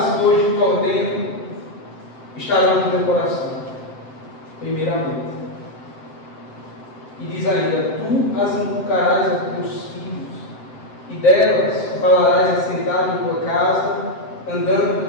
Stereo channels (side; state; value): right; late; 7.8 ms